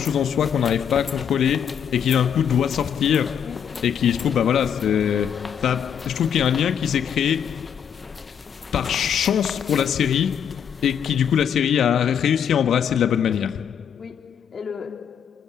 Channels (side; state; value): right; quieter; 8.2 dB